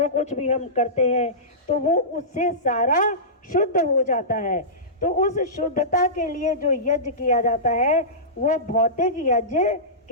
कुछ भी हम करते हैं, तो वो उससे सारा शुद्ध हो जाता है। तो उस शुद्धता के लिए जो यज्ञ किया जाता है वो भौतिक यज्ञ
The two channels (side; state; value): both; normal; correlation -0.20